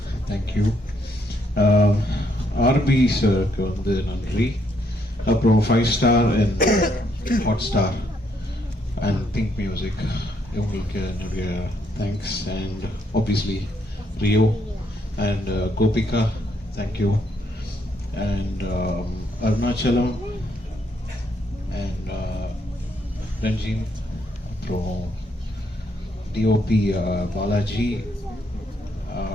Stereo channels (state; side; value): normal; both; correlation 0.73